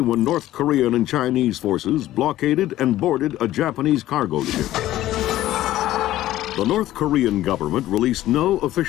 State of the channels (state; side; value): quieter; right; 14.5 dB